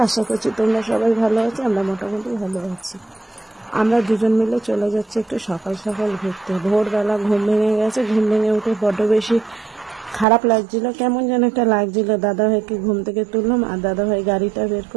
আশা করছি তোমরা সবাই ভালো আছো। আমরা মোটামুটি ভালো আছি। আমরা দুজন মিলে চলে যাচ্ছি একটু সকাল সকাল ঘুরতে। ভোরবেলা ঘুম ভেঙে গেছে, ঘুম ভেঙে উঠে বড্ড বেশি খারাপ লাগছিল, কেমন যেন একটা লাগছিল। দাদাভাইকে ঘুম থেকে তুললাম আর দাদাভাই গাড়িটা বের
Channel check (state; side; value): drops out; left; at 10.2 s